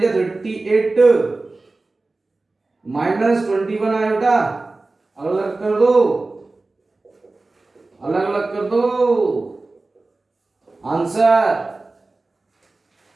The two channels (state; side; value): quieter; left; 3.3 dB